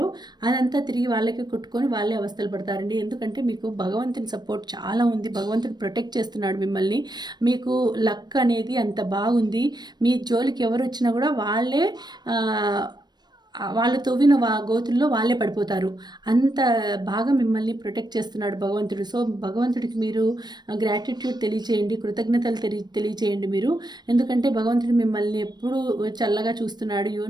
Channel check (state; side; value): late; left; 0.20 ms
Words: అదంతా తిరిగి వాళ్ళకే కొట్టుకొని వాళ్ళే అవస్థలు పడతారండి. ఎందుకంటే మీకు భగవంతుని సపోర్ట్ చాలా ఉంది, భగవంతుడు ప్రొటెక్ట్ చేస్తున్నాడు మిమ్మల్ని. మీకు లక్ అనేది అంత బాగుంది. మీ జోలికి ఎవరు వచ్చినా కూడా వాళ్ళు తవ్విన గోతుల్లో వాళ్ళే పడిపోతారు. అంత బాగా మిమ్మల్ని ప్రొటెక్ట్ చేస్తున్నాడు భగవంతుడు. సో భగవంతుడికి మీరు గ్రాటిట్యూడ్ తెలియచేయండి, కృతజ్ఞతలు తెలియచేయండి మీరు. ఎందుకంటే భగవంతుడు మిమ్మల్ని ఎప్పుడు చల్లగా చూస్తున్నాడు.